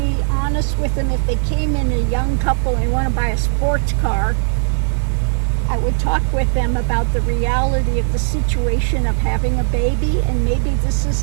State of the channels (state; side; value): silent; left; 56 dB below the other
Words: honest with them. If they came in a young couple and want to buy a sports car, I would talk with them about the reality of the situation of having a baby, and maybe this